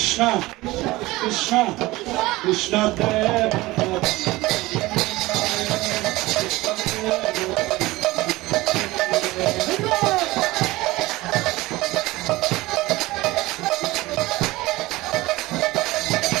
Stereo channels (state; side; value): quieter; left; 19.6 dB